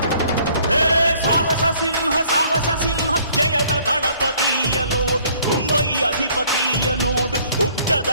ಸಾಹಸ ಸಿಂಹ ಜಯದ ದಳಪತಿಯ ನೋಡು, ಮುಂಬೈ ಅಧಿಪತಿಯ ನೋಡು,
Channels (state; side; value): inverted; both; correlation -0.59